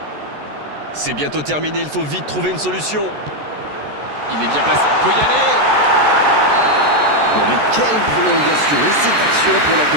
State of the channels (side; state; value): left; late; 14 ms